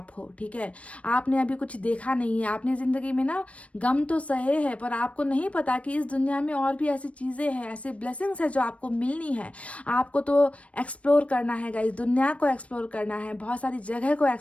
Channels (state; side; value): late; right; 0.064 ms